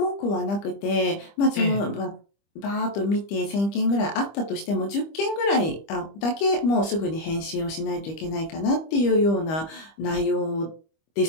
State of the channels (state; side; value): late; right; 25 ms